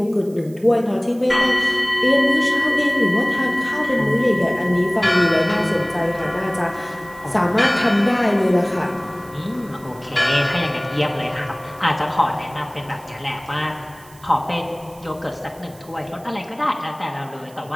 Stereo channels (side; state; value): right; noise; hiss, 25 dB below the sound